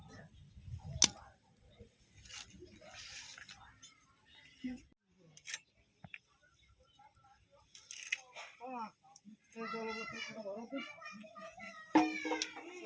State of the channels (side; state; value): both; identical; correlation 1.00